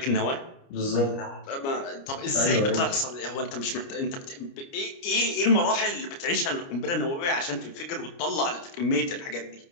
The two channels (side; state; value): right; late; 29 ms